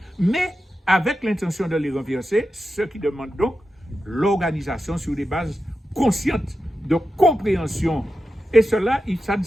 mais avec l'intention de les renverser, ce qui demande donc l'organisation sur des bases conscientes de compréhension. Et cela, ça ne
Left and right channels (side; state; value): both; normal; correlation 0.91